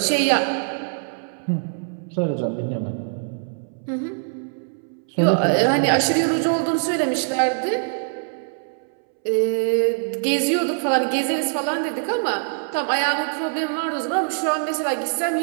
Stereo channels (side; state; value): left; silent; 63 dB below the other